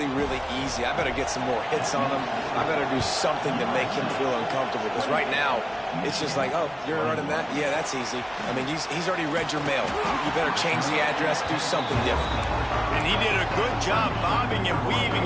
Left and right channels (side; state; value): both; identical; correlation 1.00